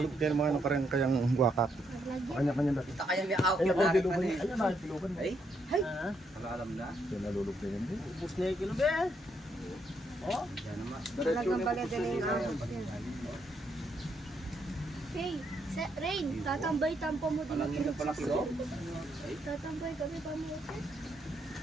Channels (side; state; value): both; normal; correlation 0.76